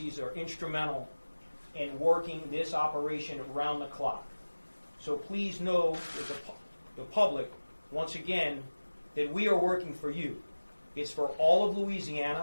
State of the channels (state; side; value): inverted; both; correlation -1.00